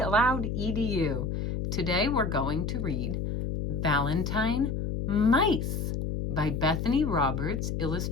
Edu. Today we're going to read Valentine Mice by Bethany Roberts,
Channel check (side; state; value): left; noise; hum, 2 dB below the sound